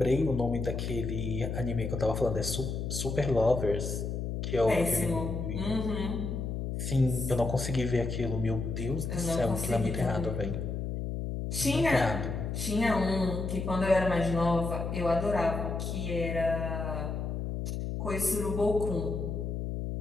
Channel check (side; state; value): left; noise; hum, 3 dB below the sound